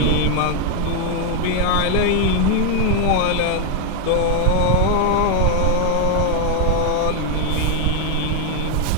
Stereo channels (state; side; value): different; both; correlation 0.01